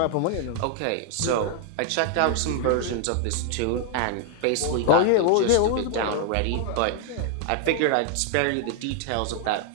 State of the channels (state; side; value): different; both; correlation 0.00